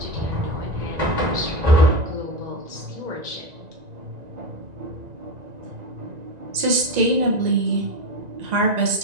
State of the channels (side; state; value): left; late; 1.9 ms